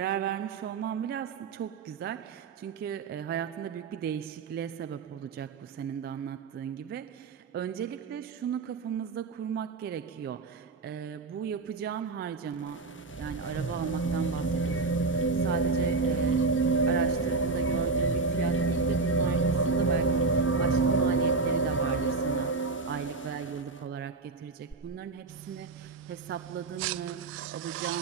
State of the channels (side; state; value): left; quieter; 4.1 dB